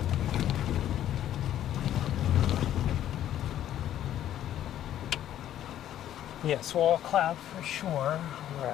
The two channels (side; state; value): right; quieter; 11.6 dB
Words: Yes, wall cloud for sure. All